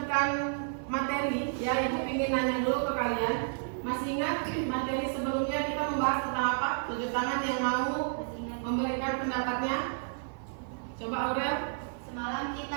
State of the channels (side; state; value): left; silent; 57 dB below the other